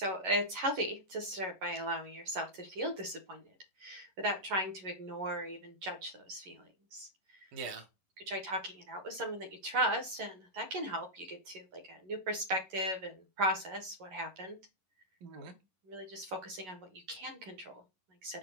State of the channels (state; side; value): late; left; 11 ms